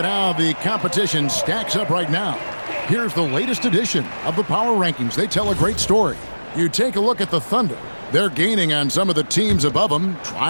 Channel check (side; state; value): both; inverted; correlation -1.00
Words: how the competition stacks up right now, here's the latest edition of the Power Rankings. They tell a great story. You take a look at the Thunder. They're gaining on some of the teams above them,